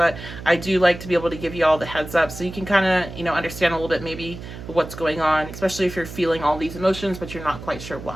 I do like to be able to give you all the heads up so you can kind of, understand a little bit maybe what's going on, especially if you're feeling all these emotions, but you're not quite sure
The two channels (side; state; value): right; noise; hum, 12 dB below the sound